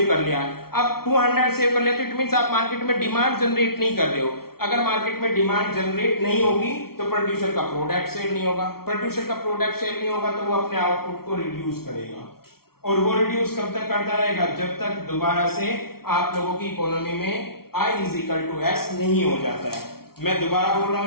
कर लिया। अब 200 सेव कर लिया तो इट मींस आप मार्केट में डिमांड जनरेट नहीं कर रहे हो। अगर मार्केट में डिमांड जनरेट नहीं होगी तो प्रोड्यूसर का प्रोडक्ट सेल नहीं होगा, प्रोड्यूसर का प्रोडक्ट सेल नहीं होगा तो वो अपने आउटपुट को रिड्यूस करेगा, और वो रिड्यूस कब तक करता रहेगा, जब तक दोबारा से आप लोगों की इकोनॉमी में I is equal to S नहीं हो जाता है। मैं दोबारा बोल रहा हूं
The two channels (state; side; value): late; right; 0.94 ms